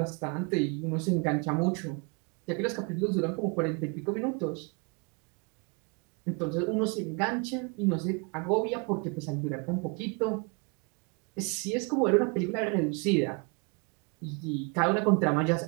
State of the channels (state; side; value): quieter; left; 32.1 dB